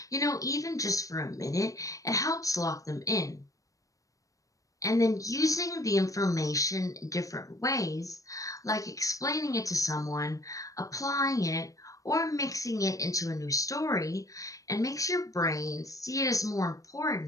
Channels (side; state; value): right; late; 0.16 ms